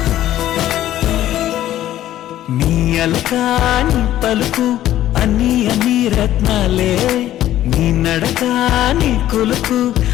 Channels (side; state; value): right; quieter; 13.0 dB